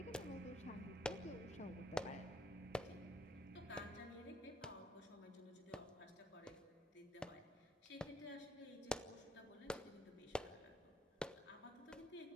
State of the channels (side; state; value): both; normal; correlation 0.67